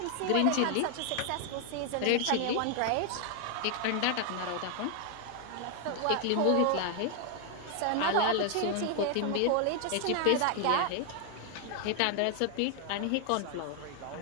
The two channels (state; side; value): different; both; correlation 0.00